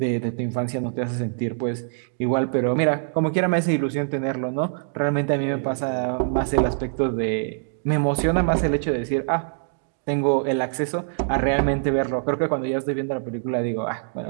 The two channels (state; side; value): silent; left; digital silence